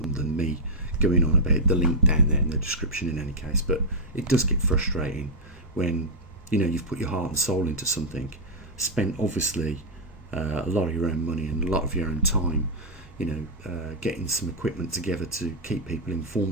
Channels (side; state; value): both; normal; correlation -0.05